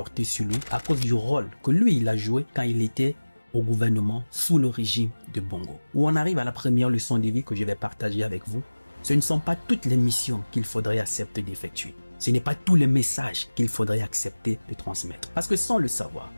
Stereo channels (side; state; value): both; inverted; correlation -1.00